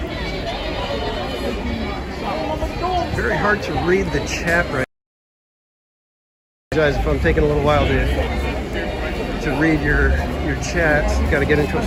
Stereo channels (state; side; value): identical; both; correlation 1.00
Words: Very hard to read the chat right Guys, if I'm taking a little while to read your chats, got to get into a